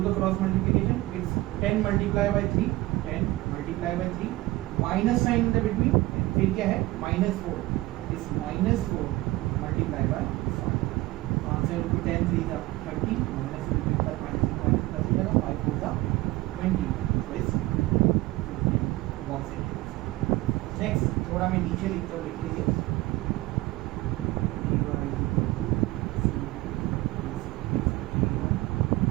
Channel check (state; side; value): quieter; left; 18.9 dB